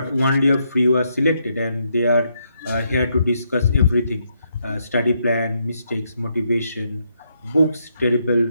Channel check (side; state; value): both; inverted; correlation -0.77